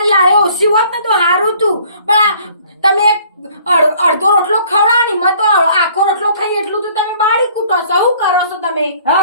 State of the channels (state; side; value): inverted; both; correlation -0.57